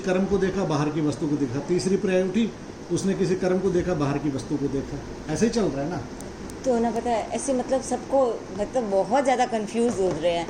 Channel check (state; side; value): identical; both; correlation 1.00